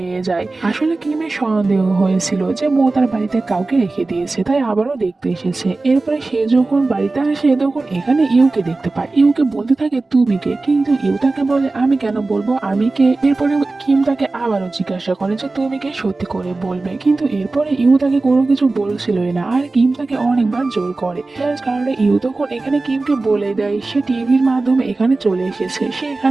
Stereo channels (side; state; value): left; quieter; 3.4 dB